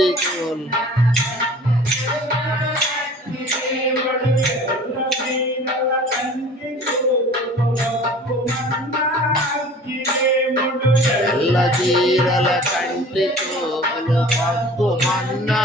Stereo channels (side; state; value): both; normal; correlation 0.45